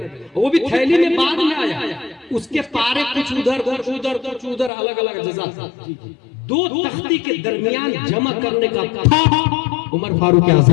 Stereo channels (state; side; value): drops out; right; at 4.7 s